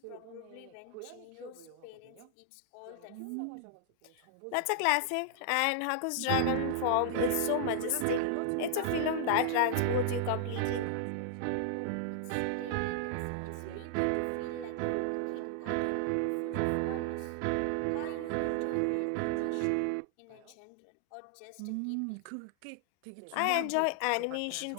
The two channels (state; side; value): different; both; correlation -0.01